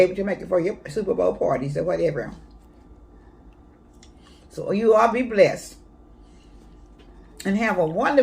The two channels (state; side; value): identical; both; correlation 1.00